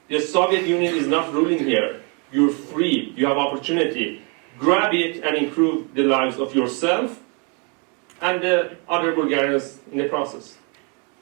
The Soviet Union is not ruling here. You're free, you have opportunity. Grab it and improve the lives of yourself and the other Bulgarians in the process.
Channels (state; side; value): quieter; left; 34.6 dB